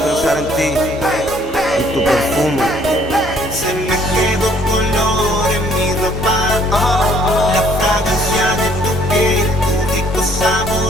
en ti, en tu perfume. Se me quedó color en mi ropa, la fragancia de tu piel, tu rico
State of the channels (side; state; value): both; normal; correlation 0.61